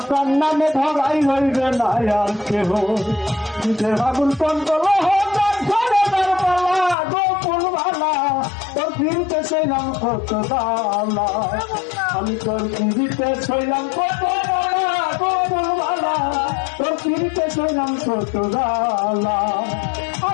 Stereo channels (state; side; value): drops out; right; at 7.0 s